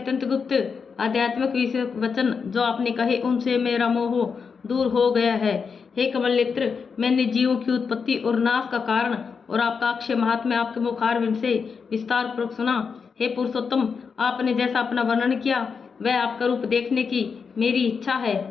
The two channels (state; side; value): quieter; right; 5.7 dB